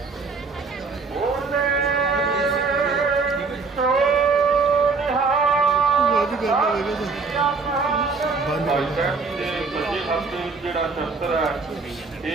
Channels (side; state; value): left; quieter; 4.4 dB